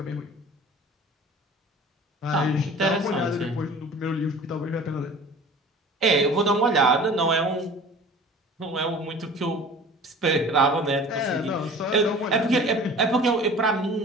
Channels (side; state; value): both; normal; correlation 0.44